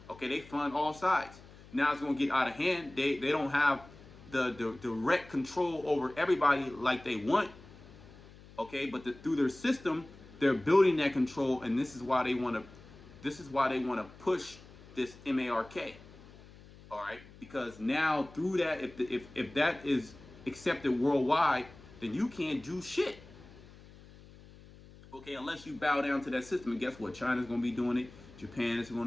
Okay, they fund all sides. Now it's gonna get out of hand. They don't have the direct control over everybody like they want. Okay, but through their system, they're building that control, and this is why they want to push this MARK. All right, because now through that, if that is accepted worldwide, then you can't do shit. Okay, unless you bow down to that system. And guess what? China's going to be doing it. Japan is going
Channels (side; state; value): left; noise; hum, 21 dB below the sound